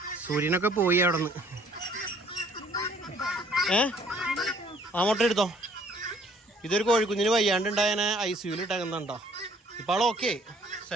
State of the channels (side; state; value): both; normal; correlation 0.59